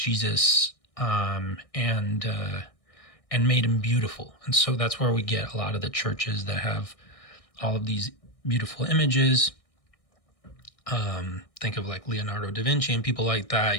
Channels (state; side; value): late; right; 1.6 ms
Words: and made him beautiful. And so that's where we get a lot of the churches that have all of these beautiful images. Think of like Leonardo da Vinci and people like that.